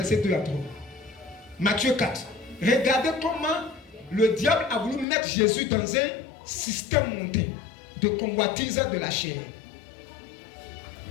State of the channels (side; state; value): right; drops out; at 5.1 s